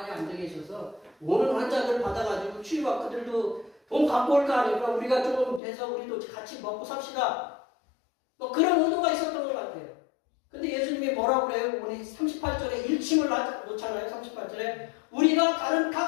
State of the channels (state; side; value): drops out; right; at 5.6 s